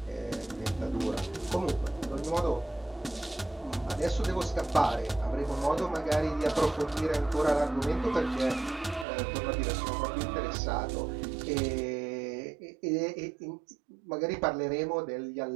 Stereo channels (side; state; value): left; drops out; at 9.1 s